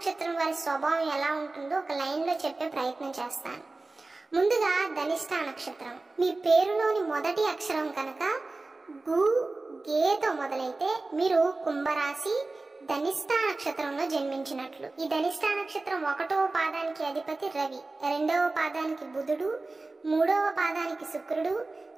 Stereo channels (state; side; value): quieter; left; 3.3 dB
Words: వారి స్వభావం ఎలా ఉంటుందో ఒక లైన్ లో చెప్పే ప్రయత్నం చేస్తాను. ముందుగా ధనిష్ట నక్షత్రం. మీ పేరులోని మొదటి అక్షరం కనుక గు, గేతో మొదలైతే మీరు కుంభరాశి ధనిష్ట నక్షత్రంలో జన్మించినట్లు. ఈ ధనిష్ట నక్షత్రం 1వ పాదానికి అధిపతి రవి, 2వ పాదానికి బుధుడు, 3వ పాదానికి శుక్రుడు,